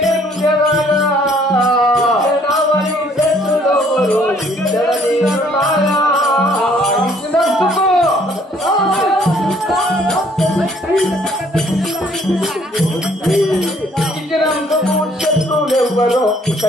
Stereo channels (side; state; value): both; normal; correlation 0.61